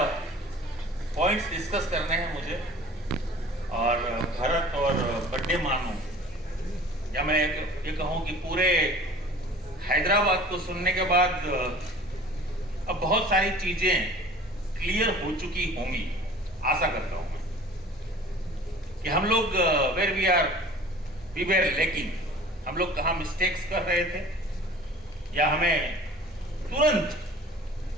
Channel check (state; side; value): normal; both; correlation 0.45